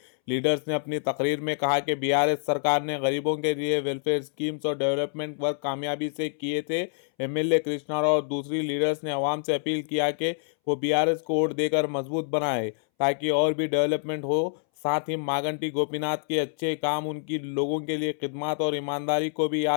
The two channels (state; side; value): silent; right; 60 dB below the other